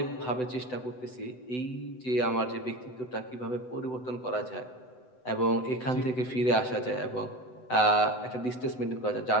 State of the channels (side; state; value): right; late; 7.9 ms